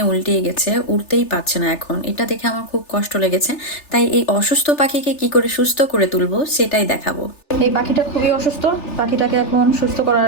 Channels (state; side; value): late; right; 3.3 ms